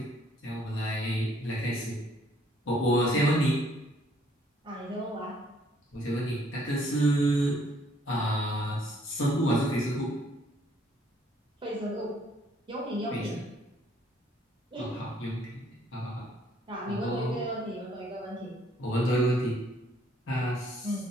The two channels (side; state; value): both; normal; correlation 0.64